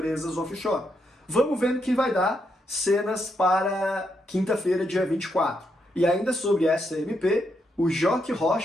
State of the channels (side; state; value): both; normal; correlation 0.80